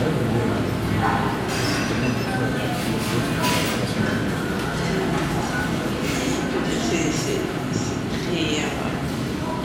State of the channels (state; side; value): identical; both; correlation 1.00